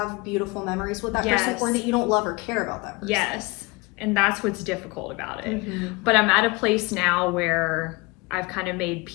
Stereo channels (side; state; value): right; quieter; 25.4 dB